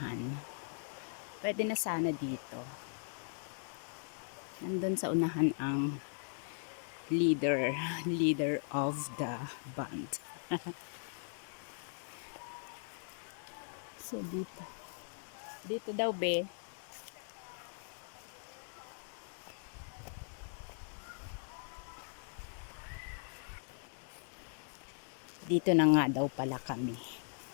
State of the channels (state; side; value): silent; right; 52 dB below the other